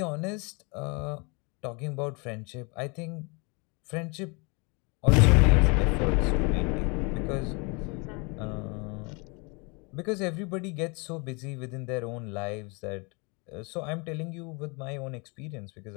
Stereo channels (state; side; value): quieter; right; 30.7 dB